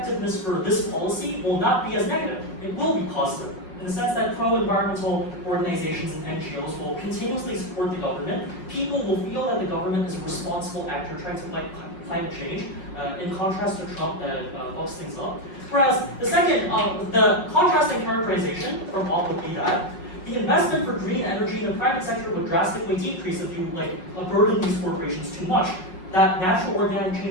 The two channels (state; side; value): late; right; 5.5 ms